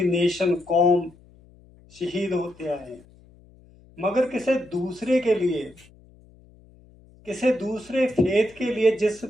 नेशन, कौम शहीद होते आए हैं, मगर किसी दूसरे के लिए, किसी दूसरे फेथ के लिए, जिस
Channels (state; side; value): noise; left; hum, 26 dB below the sound